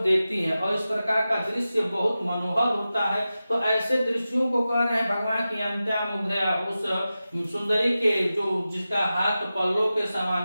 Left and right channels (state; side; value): inverted; both; correlation -0.94